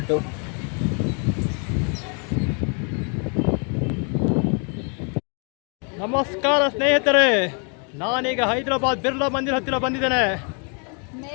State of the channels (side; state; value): right; quieter; 38.9 dB